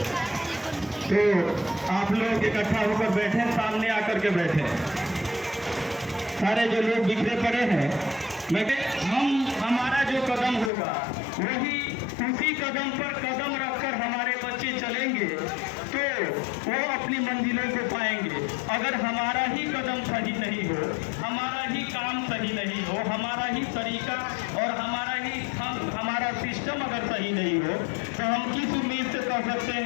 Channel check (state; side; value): drops out; right; at 10.7 s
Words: तो आप लोग इकट्ठा होकर बैठे, सामने आकर के बैठे। सारे जो लोग बिखरे पड़े हैं, हमारा जो कदम होगा वही, उसी कदम पर कदम रखकर हमारे बच्चे चलेंगे तो वो अपनी मंजिलों को पाएंगे। अगर हमारा ही कदम सही नहीं हो, हमारा ही काम सही नहीं हो, हमारा ही तरीका और हमारा सिस्टम अगर सही नहीं हो तो हम किस उम्मीद से कह सकते